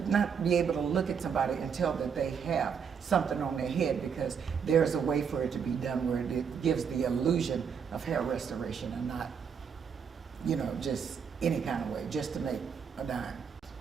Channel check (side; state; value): left; quieter; 6.8 dB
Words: not be able to look at somebody and tell that they have something on their head, because there's a way for it to be done where it gives the illusion of hair restoration and not, you know, just any kind of way, just to make a dime.